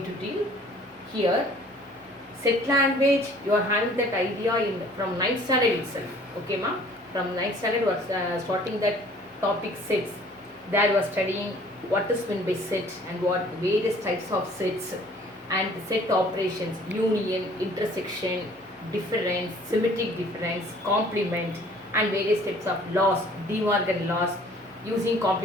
to deal here. Set language, you are having that idea from 9th standard itself. Okay, ma? From 9th standard, was starting that topic 6. There you are studying what is meant by set and what various types of sets and set operations, union, intersection, difference, symmetric difference, complement, and various types of laws, De Morgan laws, using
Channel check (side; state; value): both; normal; correlation 0.53